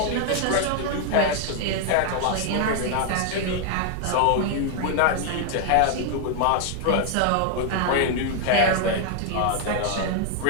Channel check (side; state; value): both; different; correlation 0.00